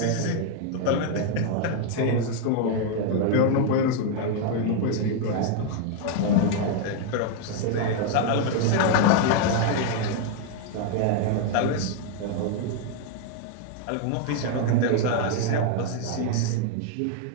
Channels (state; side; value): different; both; correlation 0.00